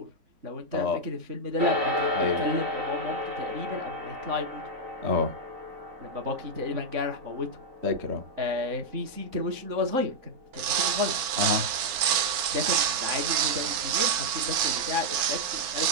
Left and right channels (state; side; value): late; left; 4.3 ms